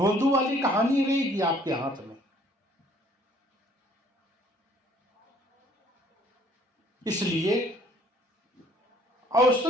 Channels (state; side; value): normal; both; correlation 0.59